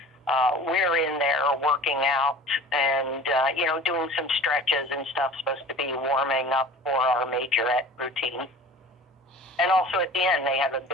we're in there working out and, doing some stretches and stuff, supposed to be warming up for our majorette routine. And also at the end, they have a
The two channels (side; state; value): both; normal; correlation 0.42